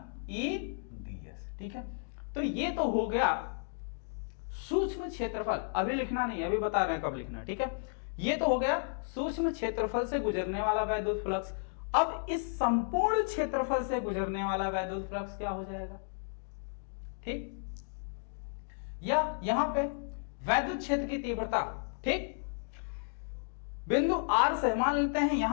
E ds। ठीक है, तो ये तो हो गया सूक्ष्म क्षेत्रफल। अभी लिखना नहीं, अभी बता रहे हैं कब लिखना। ठीक है, ये तो हो गया सूक्ष्म क्षेत्रफल से गुजरने वाला वैद्युत फ्लक्स। अब इस संपूर्ण क्षेत्रफल से गुजरने वाला वैद्युत फ्लक्स क्या हो जाएगा, ठीक, या यहां पे वैद्युत क्षेत्र की तीव्रता, ठीक, बिंदु R से मान लेते हैं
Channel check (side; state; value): right; silent; digital silence